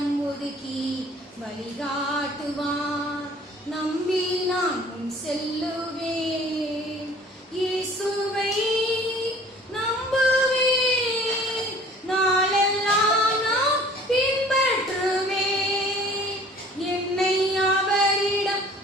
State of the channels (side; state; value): both; normal; correlation 0.50